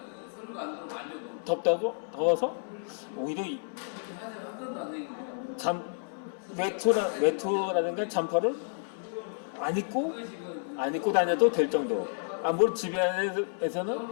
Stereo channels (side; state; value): right; silent; 57 dB below the other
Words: 더워서 오히려 외투라든가 잠퍼를 안 입고 다녀도 될 정도. 물론 집에 안에서는